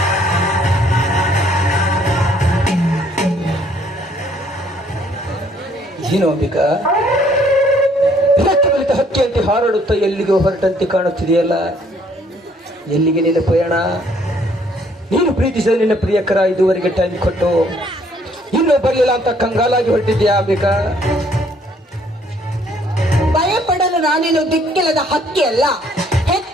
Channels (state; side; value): normal; both; correlation 0.64